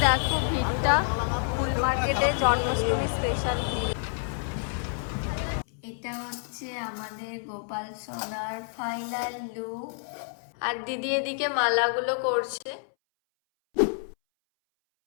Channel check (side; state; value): right; silent; 59 dB below the other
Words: দেখো ভিড়টা ফুল মার্কেটে, জন্মাষ্টমী স্পেশাল ভিড়। এটা হচ্ছে আমাদের গোপাল সোনার ফাইনাল লুক। আর দিদি এদিকে মালাগুলো করছে।